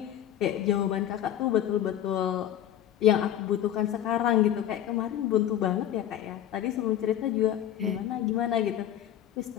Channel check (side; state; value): right; quieter; 11.1 dB